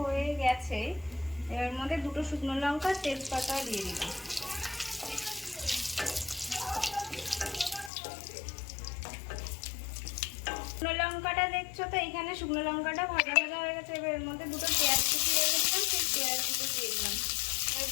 গেছে। এর মধ্যে দুটো শুকনো লঙ্কা তেজপাতা দিয়ে দিলাম। শুকনো লঙ্কাটা দেখছো তো, এখানে শুকনো লঙ্কাটা ভাজা ভাজা হয়ে গেছে। এবার এর মধ্যে দুটো পেঁয়াজ কুচি রেখেছিলাম, সেই পেঁয়াজ কুচি দিয়ে দিলাম। এবার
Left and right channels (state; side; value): drops out; right; at 7.9 s